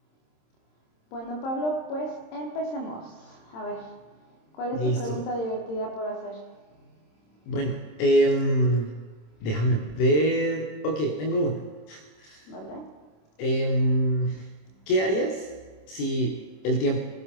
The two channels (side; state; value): right; late; 26 ms